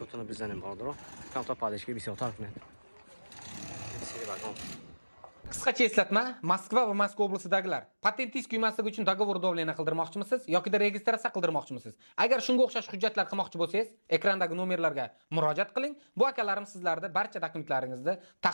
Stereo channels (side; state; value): both; inverted; correlation -1.00